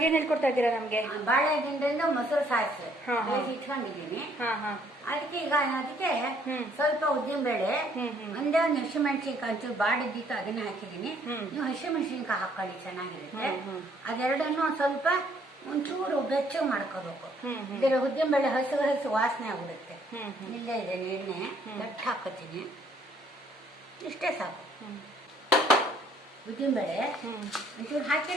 ಏನ್ ಹೇಳ್ಕೊಡ್ತಾ ಇದ್ದೀರಾ ನಮ್ಗೆ? ಬಾಳೆದಿಂಡಿಂದ ಮೊಸರು ಸಾಸಿವೆ ಬೇಯಿಸಿ ಇಟ್ಕೊಂಡಿದ್ದೀನಿ. ಅದಕ್ಕೆ ಈಗ ಅದಕ್ಕೆ ಸ್ವಲ್ಪ ಉದ್ದಿನಬೇಳೆ, ಒಂದೇ ಒಂದು ಹಸಿಮೆಣಸಿನ್ಕಾಯಿ ಒಂಚೂರು ಬಾಡಿದ್ದಿತ್ತು ಅದನ್ನ ಹಾಕಿದ್ದೀನಿ. ನೀವು ಹಸಿಮೆಣಸಿನ್ಕಾಯಿ ಹಾಕೊಳ್ಳಿ, ಚೆನ್ನಾಗಿರುತ್ತೆ. ಅದೆರಡನ್ನು ಸ್ವಲ್ಪ ಒಂಚೂರು ಬೆಚ್ಚಗೆ ಮಾಡ್ಕೋಬೇಕು. ಇದರ ಉದ್ದಿನಬೇಳೆ ಹಸಿ ವಾಸನೆ ಆಗ್ಬಿಡುತ್ತೆ. ಇಲ್ಲೇ ಇದೆ ಎಣ್ಣೆ ಗಟ್ಟಿ ಹಾಕೋತೀನಿ, ಇಷ್ಟೇ ಸಾಕು. ಉದ್ದಿನಬೇಳೆ ಒಂಚೂರು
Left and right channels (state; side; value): normal; both; correlation 0.65